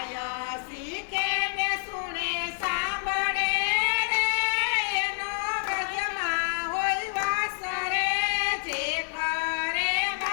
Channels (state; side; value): silent; right; digital silence